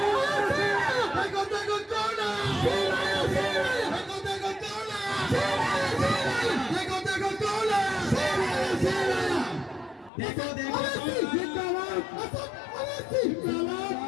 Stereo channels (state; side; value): drops out; right; at 10.1 s